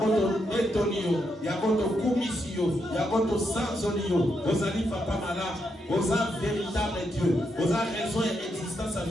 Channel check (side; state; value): both; normal; correlation 0.81